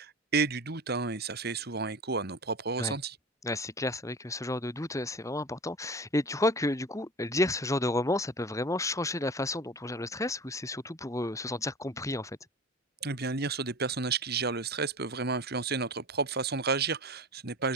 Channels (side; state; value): both; normal; correlation 0.34